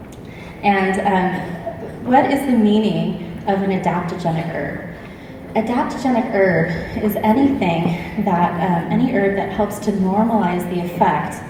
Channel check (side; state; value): both; identical; correlation 1.00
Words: And what is the meaning of an adaptogenic herb? Adaptogenic herb is anything that, any herb that helps to normalize the effect